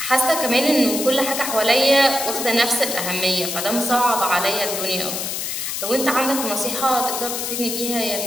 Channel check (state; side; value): noise; left; hiss, 3 dB below the sound